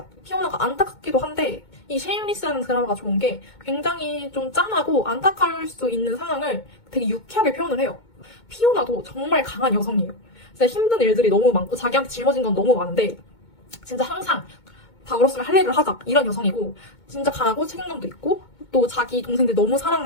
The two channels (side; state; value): right; late; 2.2 ms